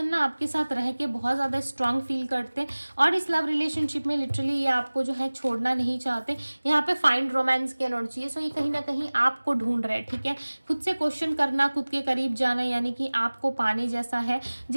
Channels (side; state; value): both; inverted; correlation -1.00